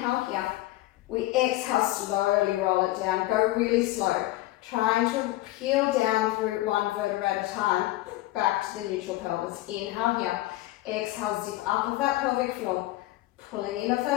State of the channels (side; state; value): right; quieter; 17.1 dB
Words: here. We exhale, slowly roll it down. Go really slow. Trying to peel down through one vertebra at a time. Back to the neutral pelvis. Inhale here. Exhale, zip up of that pelvic floor. Pulling in of